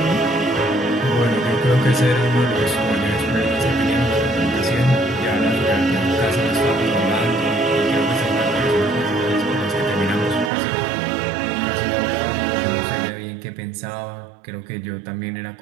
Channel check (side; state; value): left; drops out; at 10.5 s